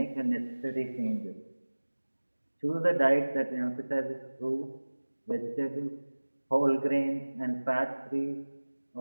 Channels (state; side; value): inverted; both; correlation -1.00